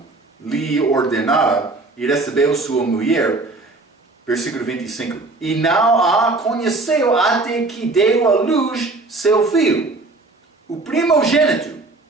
lhe ordenara, e recebeu sua mulher, versículo 25, e não a conheceu até que deu à luz seu filho, o primogênito,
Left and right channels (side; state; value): left; quieter; 3.3 dB